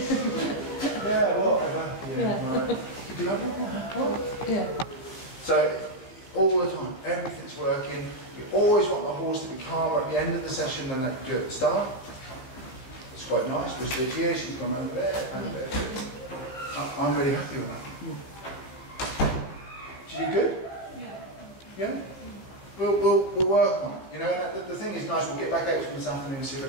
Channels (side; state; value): right; late; 15 ms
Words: whatever. Yeah, right. You do that? What? Yeah. So, all the time, everything's working. We always want the horse to be calmer at the end of the session than they do at the start. It's quite nice. We're stood here, she's gone over there, and there. I'm really happy with that. Did you good? Yeah? We'll work on it. You know, and the thing is nice, we'll get back out to them this afternoon and see if